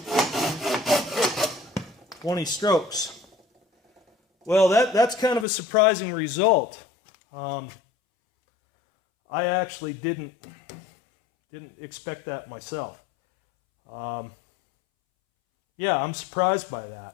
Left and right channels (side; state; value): right; drops out; at 5.5 s